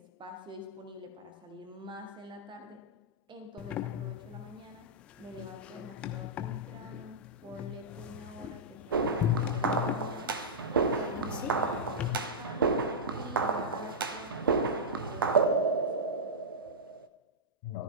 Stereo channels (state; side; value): normal; both; correlation -0.10